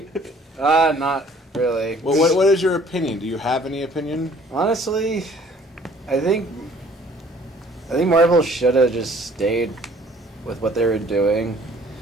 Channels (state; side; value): normal; both; correlation 0.55